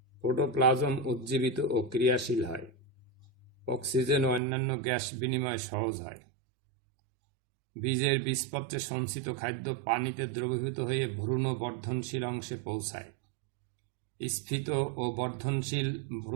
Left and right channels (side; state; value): left; drops out; at 4.4 s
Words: প্রোটোপ্লাজম উজ্জীবিত ও ক্রিয়াশীল হয়, অক্সিজেন ও অন্যান্য গ্যাস বিনিময় সহজ হয়, বীজের বীজপত্রে সঞ্চিত খাদ্য পানিতে দ্রবীভূত হয়ে ভ্রূণ বর্ধনশীল অংশে পৌঁছায়, স্ফীত ও বর্ধনশীল